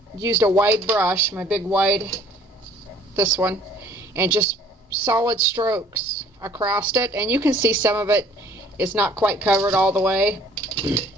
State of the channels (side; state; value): both; normal; correlation 0.56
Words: used a wide brush, my big wide, this one, and just solid strokes across it. And you can see some of it is not quite covered all the way.